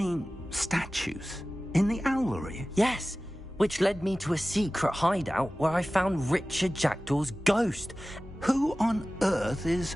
statues? In the owlery? Yes, which led me to a secret hideout where I found Richard Jackdaw's ghost. Who on earth is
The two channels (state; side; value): normal; both; correlation 0.97